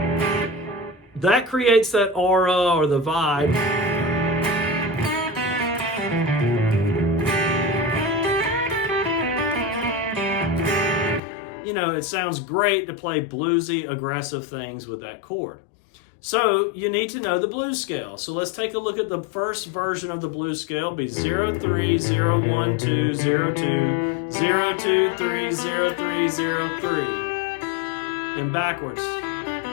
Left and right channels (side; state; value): right; drops out; at 11.2 s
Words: That creates that aura or the vibe. You know, it sounds great to play bluesy, aggressive things with that chord. So you need to know the blues scale. So let's take a look at the first version of the blues scale. Be 0, 3, 0, 1, 2, 0, 2, 0, 2, 3, 0, 3, 0, 3. And backwards.